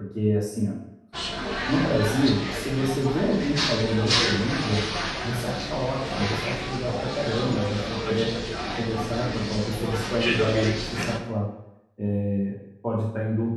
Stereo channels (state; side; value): identical; both; correlation 1.00